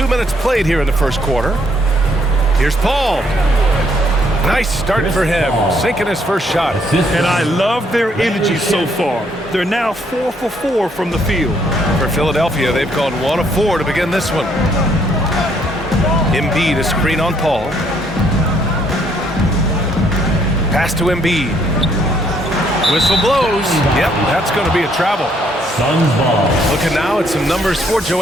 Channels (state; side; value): normal; both; correlation 0.68